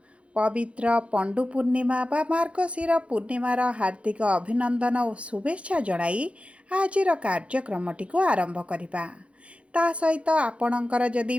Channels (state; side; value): late; left; 0.061 ms